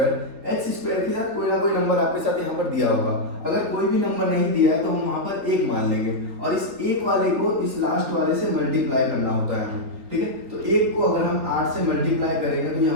के साथ कोई ना कोई नंबर आपके साथ यहाँ पर दिया होगा। अगर कोई भी नंबर नहीं दिया है तो हम वहाँ पर एक मान लेंगे और इस एक वाले को इस लास्ट वाले से मल्टीप्लाई करना होता है हमें, ठीक है। तो एक को अगर हम 8 से मल्टीप्लाई करेंगे तो ये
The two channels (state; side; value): late; left; 4.0 ms